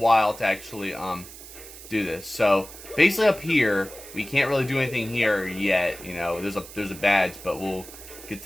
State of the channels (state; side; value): noise; right; hiss, 16 dB below the sound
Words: to actually do this. So basically up here, we can't really do anything here yet. You know, there's a badge, but we'll get to